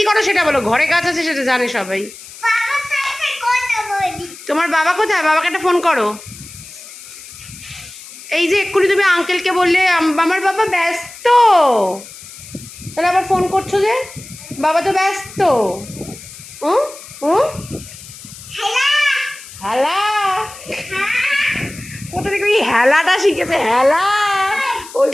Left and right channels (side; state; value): left; noise; hiss, 16 dB below the sound